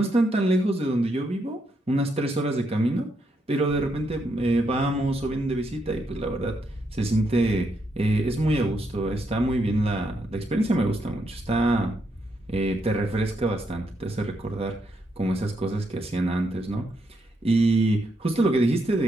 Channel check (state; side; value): normal; both; correlation 0.79